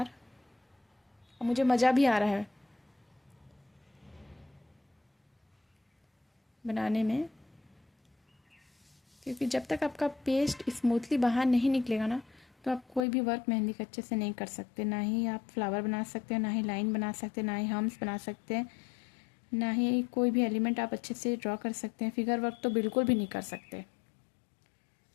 और मुझे मज़ा भी आ रहा है बनाने में, क्योंकि जब तक आपका पेस्ट स्मूथली बाहर नहीं निकलेगा ना, तो आप कोई भी वर्क मेहंदी का अच्छे से नहीं कर सकते। ना ही आप फ्लावर बना सकते हैं, ना ही लाइन बना सकते हैं, ना ही हम्स बना सकते हैं, ना ही कोई भी एलिमेंट आप अच्छे से ड्रॉ कर सकते हैं। फिगर वर्क तो बिल्कुल भी नहीं कर सकते।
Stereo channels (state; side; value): drops out; right; at 13.0 s